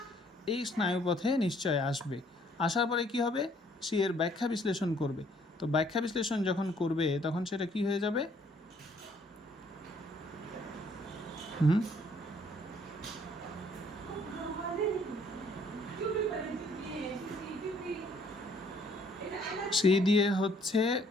এই স্নায়ুপথে নিশ্চয় আসবে। আসার পরে কি হবে? সে এর ব্যাখ্যা বিশ্লেষণ করবে। তো ব্যাখ্যা বিশ্লেষণ যখন করবে, তখন সেটা কি হয়ে যাবে? সি দিয়ে হচ্ছে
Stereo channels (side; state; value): both; normal; correlation 0.63